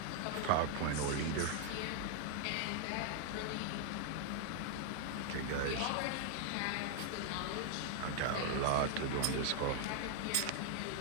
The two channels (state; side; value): different; both; correlation 0.00